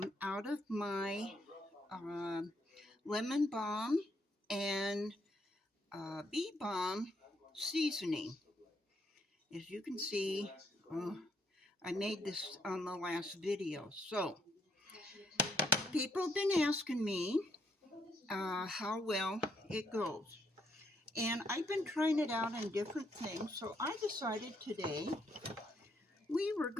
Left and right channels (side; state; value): both; normal; correlation 0.73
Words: of my lemon balm and bee balm seasoning. As you can see, I made this on the last video. So people have been asking me how well it goes. And I've been trying it out on different things. So I decided today we were